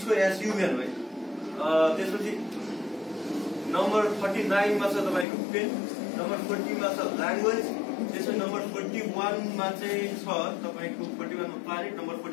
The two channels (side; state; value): right; drops out; at 5.2 s